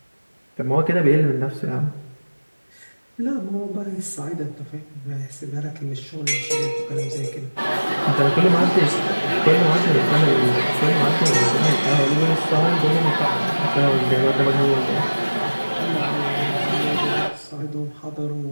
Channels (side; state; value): both; inverted; correlation -1.00